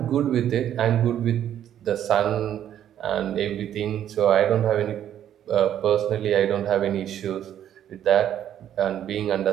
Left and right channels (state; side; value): quieter; left; 10.5 dB